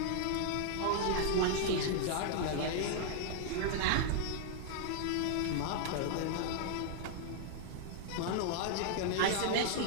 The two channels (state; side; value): different; both; correlation 0.00